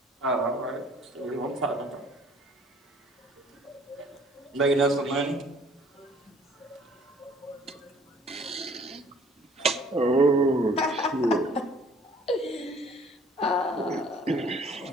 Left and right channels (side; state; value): both; normal; correlation 0.56